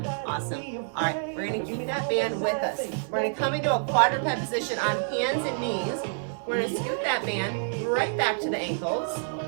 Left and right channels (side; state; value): left; silent; digital silence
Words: Awesome. All right, we're gonna keep that band with us. We're gonna come into a quadruped position on hands and knees. We're gonna scoot that band right back to the ankles.